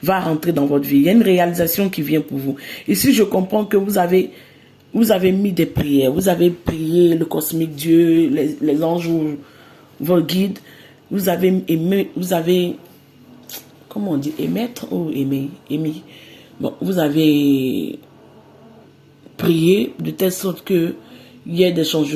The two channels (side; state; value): both; identical; correlation 1.00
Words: va rentrer dans votre vie. Il y a une réalisation qui vient pour vous. Ici, je comprends que vous avez mis des prières, vous avez prié le cosmique Dieu, les anges, vos guides. vous avez aimé, vous avez, comment on dit, émettre ou aimer, émis. Bon, vous avez prié de telle sorte que il y ait des